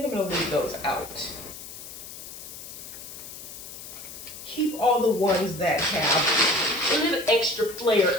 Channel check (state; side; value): noise; left; hiss, 12 dB below the sound